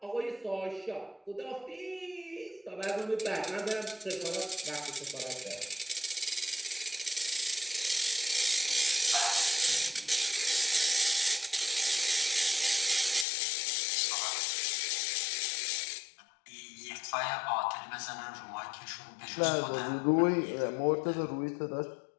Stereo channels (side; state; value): right; drops out; at 13.2 s